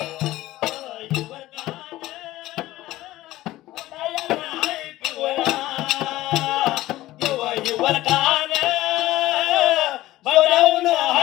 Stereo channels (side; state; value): right; quieter; 16.2 dB